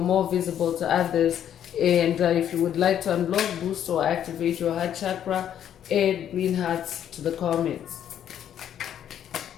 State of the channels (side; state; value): right; quieter; 10.0 dB